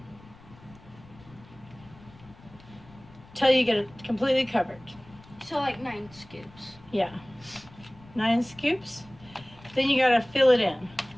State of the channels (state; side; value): noise; left; rumble, 23 dB below the sound